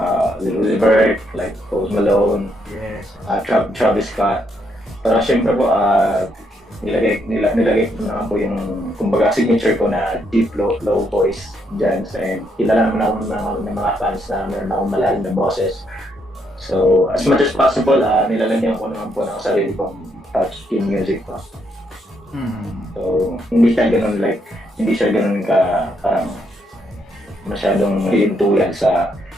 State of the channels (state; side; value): normal; both; correlation 0.75